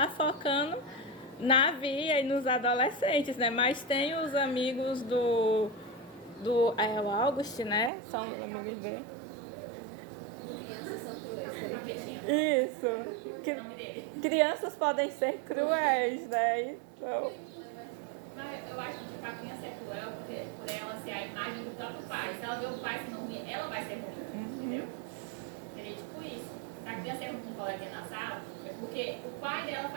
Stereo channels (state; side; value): drops out; left; at 7.9 s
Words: focando na Via e nos adolescentes, né? Mas tem os amigos o August, né? São os amigos dele. Crianças são cruéis. Isso. O nome dele. Crianças podem ser cruéis, né? Então, Mas eu acho que tipo, a criança é cruel porque, por ela ser a imagem do próprio pai. Se ela vê o pai sendo ruim, ela vai ser ruim. Entendeu? Seria tipo isso. Se a criança é ruim com um coleguinha na sala, é porque o pai dela